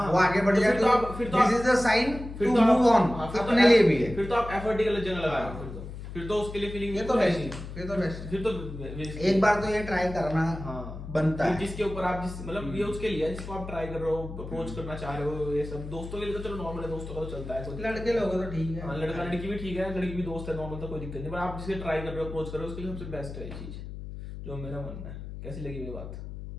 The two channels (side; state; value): left; noise; hum, 10 dB below the sound